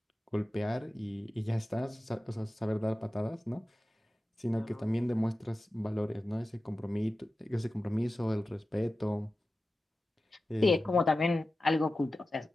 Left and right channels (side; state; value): both; normal; correlation 0.94